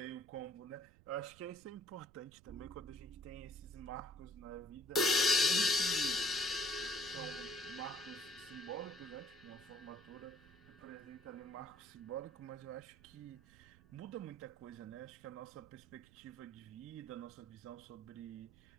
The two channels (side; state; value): right; noise; rumble, 23 dB below the sound